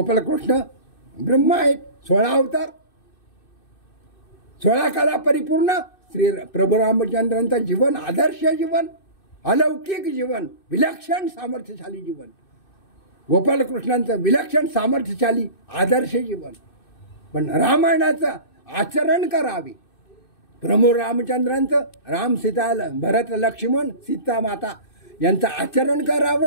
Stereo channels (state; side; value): late; right; 2.6 ms